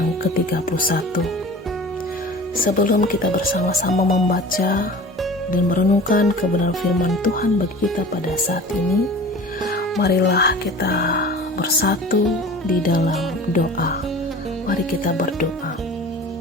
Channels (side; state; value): both; normal; correlation 0.40